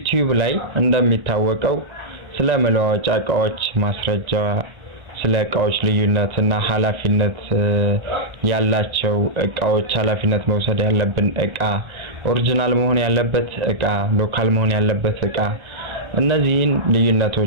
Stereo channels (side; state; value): left; late; 1.4 ms